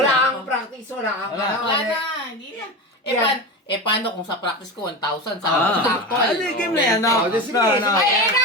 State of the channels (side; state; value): both; normal; correlation 0.24